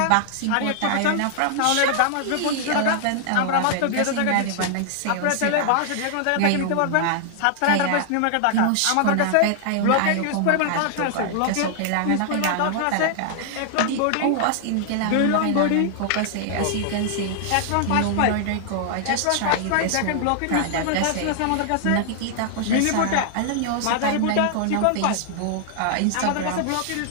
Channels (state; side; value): different; both; correlation -0.01